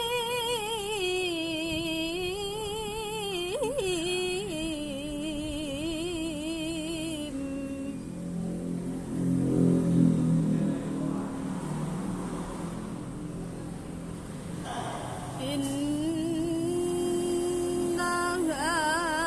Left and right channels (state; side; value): identical; both; correlation 1.00